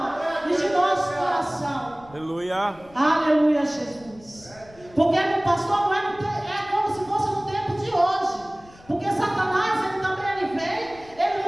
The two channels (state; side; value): noise; left; rumble, 24 dB below the sound